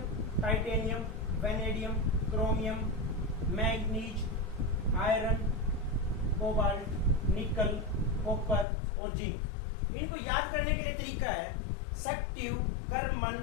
titanium, vanadium, chromium, manganese, iron, cobalt, निकल, कॉपर और जिंक। इनको याद करने के लिए तरीका है सक्टिव, कर्मन,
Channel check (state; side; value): drops out; right; at 8.7 s